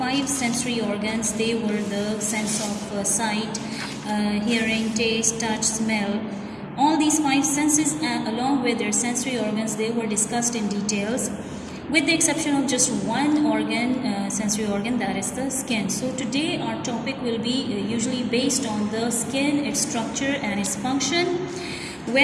sensory organs. They were the sense of sight, hearing, taste, touch, smell. All these 5 senses along with their sensory organs, they were discussed in details, with the exception of just one organ, sensory organ, that is the skin. So today our topic will be usually based on the skin, its structure and its function,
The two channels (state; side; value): identical; both; correlation 1.00